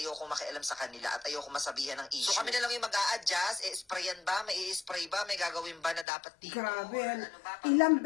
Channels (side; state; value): right; drops out; at 6.1 s